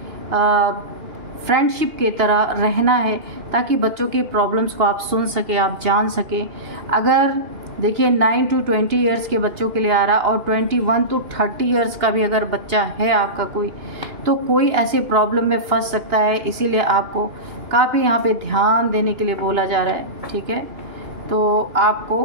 फ्रेंडशिप की तरह रहना है, ताकि बच्चों की प्रॉब्लम्स को आप सुन सके, आप जान सके। अगर देखिए 9 to 20 ईयर्स के बच्चों के लिए आ रहा, और 21 to 30 ईयर्स का भी अगर बच्चा है आपका कोई, तो कोई ऐसी प्रॉब्लम में फंस सकता है। इसीलिए आपको काफ़ी यहाँ पे ध्यान देने के लिए बोला जा रहा है, ठीक है। तो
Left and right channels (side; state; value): left; late; 2.9 ms